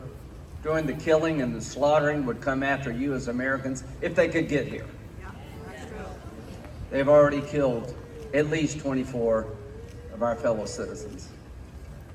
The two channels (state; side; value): identical; both; correlation 1.00